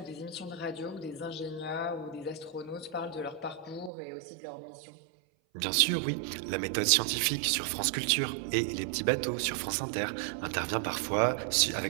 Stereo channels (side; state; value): left; drops out; at 3.9 s